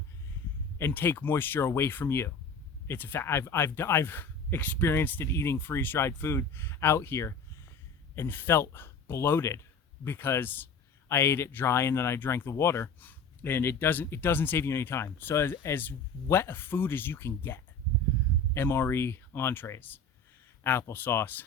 and take moisture away from you. It's a fact. I've experienced it eating freeze-dried food out here and felt bloated because I ate it dry and then I drank the water, and it doesn't save you any time. So as wet a food as you can get, MRE entrees, applesauce,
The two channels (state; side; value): quieter; right; 3.8 dB